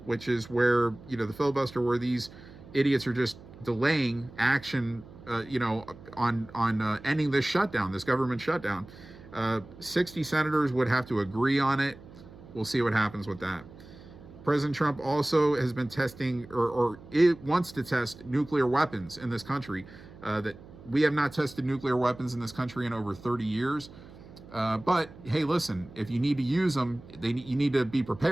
which is where, the filibuster where these idiots are just delaying action, on ending this shutdown, this government shutdown. 60 senators would have to agree on it. We'll see what happens with that. President Trump also has been testing, or it wants to test nuclear weapons in this country. That we have not tested nuclear weapons in this country in over 30 years. But hey, listen, if you need to use them, you need to be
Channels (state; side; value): noise; right; hum, 19 dB below the sound